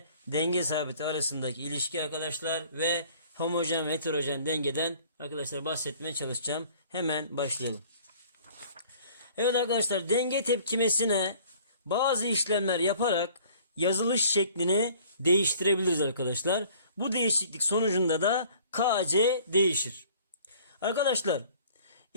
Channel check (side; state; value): both; inverted; correlation -0.52